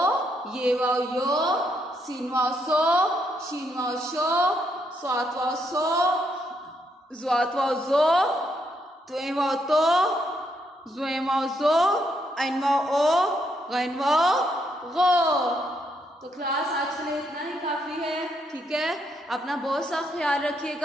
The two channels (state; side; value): normal; both; correlation 0.76